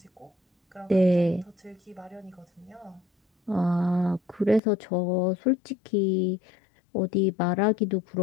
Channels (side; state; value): right; drops out; at 4.6 s